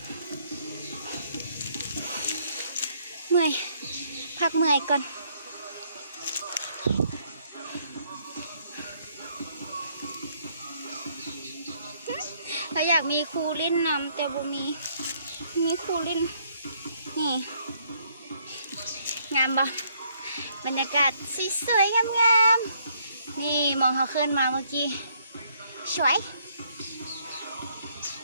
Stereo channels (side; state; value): both; inverted; correlation -0.68